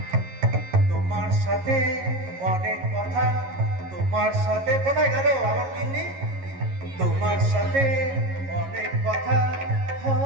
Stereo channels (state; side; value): late; left; 11 ms